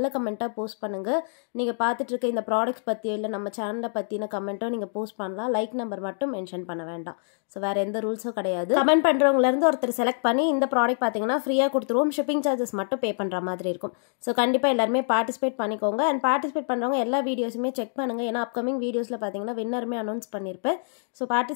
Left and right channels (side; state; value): right; silent; digital silence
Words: கமெண்ட்டாக போஸ்ட் பண்ணுங்கள். நீங்கள் பார்த்துட்டு இருக்க இந்த ப்ராடக்ட்ஸ் பற்றியோ இல்லை நம்ம சேனலை பற்றின கமெண்ட்டோ நீங்கள் போஸ்ட் பண்ணலாம். லைக் நம்பர் மட்டும் மென்ஷன் பண்ண வேண்டாம். ஸோ வேறு எந்த ரூல்ஸும் கிடையாது. கமெண்ட் பண்ணுறவங்கலேருந்து ஒருத்தர் செலக்ட் பண்ணி இந்த ப்ராடக்ட் பார்த்தீங்கன்னா ஃப்ரீயாக கொடுத்துருவோம். ஷிப்பிங் சார்ஜஸ் மட்டும் பே பண்ணுற மாதிரி இருக்கும். ஸோ கண்டிப்பாக எல்லாருமே பார்ட்டிசிபேட் பண்ணிக்கோங்க. அண்ட் பார்ட்டிசிபேட் பண்ணுறவங்க எல்லா வீடியோஸுமே செக் பண்ணுங்கள். ஏன்னா அப்கமிங் வீடியோஸில் பார்த்தீங்கன்னா வின்னருமே அனௌன்ஸ் பண்ணியிருப்பேன். ஸோ